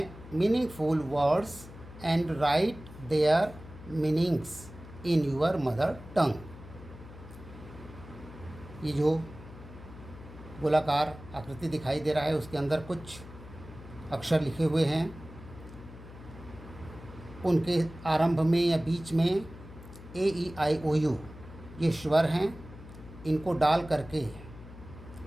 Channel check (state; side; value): noise; left; hum, 16 dB below the sound